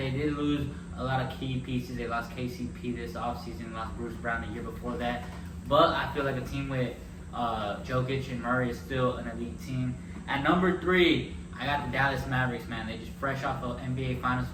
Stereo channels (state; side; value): identical; both; correlation 1.00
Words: did lose a lot of key pieces. They lost KCP this offseason, lost Bruce Brown the year before that. But I feel like a team with Jokic and Murray is still an elite team. At number 3, I got the Dallas Mavericks, man. They just fresh off an NBA Finals